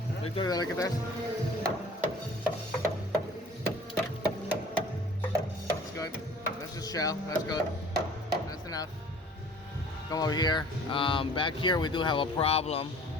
Victor, dale acá atrás. That's good. That's just shell. That's good. That's enough. Come over here. Back here we do have a problem.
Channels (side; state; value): both; normal; correlation 0.49